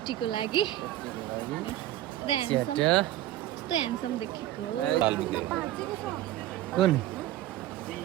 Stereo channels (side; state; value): left; quieter; 14.0 dB